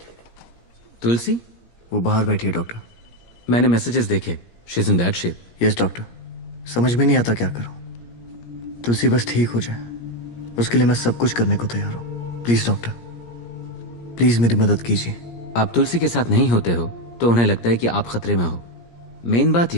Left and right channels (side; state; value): right; late; 17 ms